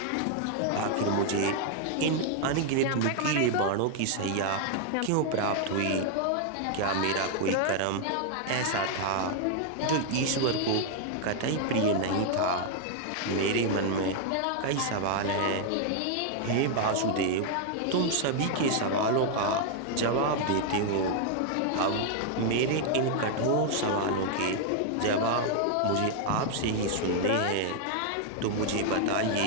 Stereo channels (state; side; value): different; both; correlation 0.00